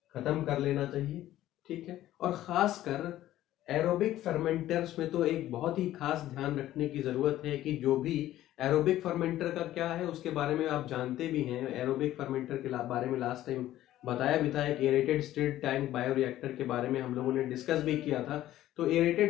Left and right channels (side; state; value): right; quieter; 13.9 dB